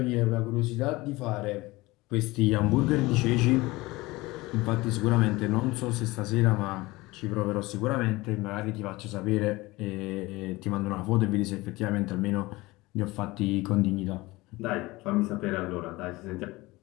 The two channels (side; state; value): right; quieter; 20.9 dB